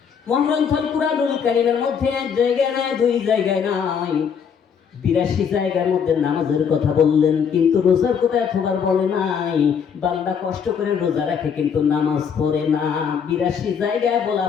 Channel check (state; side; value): quieter; right; 7.0 dB